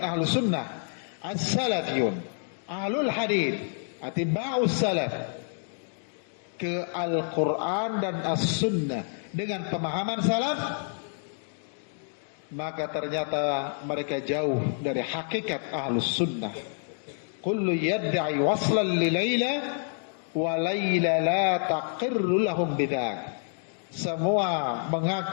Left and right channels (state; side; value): silent; right; digital silence